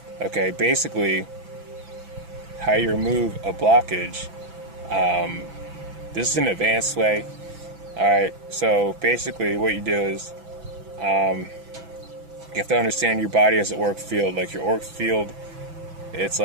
Okay, basically, how you remove a blockage, this is an advanced way. Alright, so basically what you do is, you have to understand your body as an auric field. Like, your auric field, it's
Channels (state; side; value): late; left; 6.0 ms